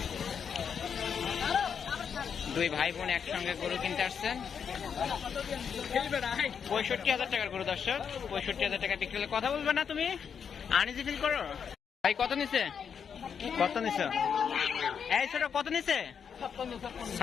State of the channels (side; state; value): right; quieter; 7.1 dB